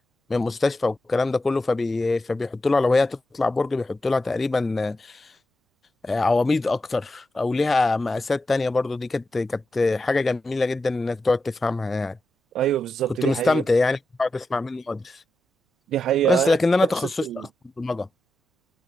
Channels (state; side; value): normal; both; correlation 0.89